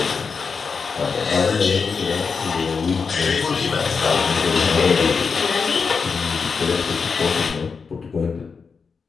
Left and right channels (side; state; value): right; quieter; 5.3 dB